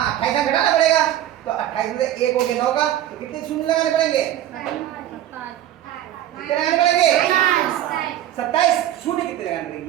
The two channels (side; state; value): left; quieter; 12.3 dB